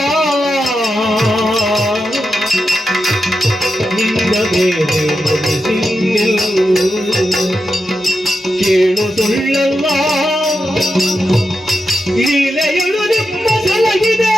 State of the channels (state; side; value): normal; both; correlation 0.88